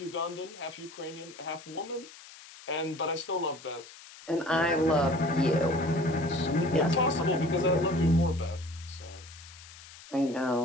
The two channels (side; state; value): left; noise; hiss, 18 dB below the sound